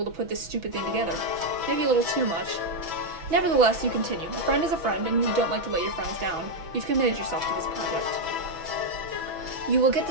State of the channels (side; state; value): left; late; 6.1 ms